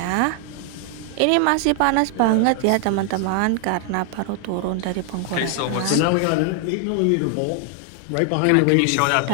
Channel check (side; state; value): both; different; correlation 0.00